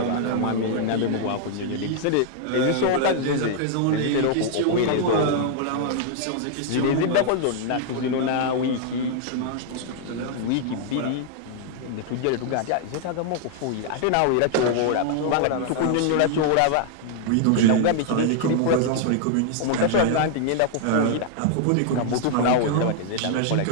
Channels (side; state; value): both; different; correlation -0.01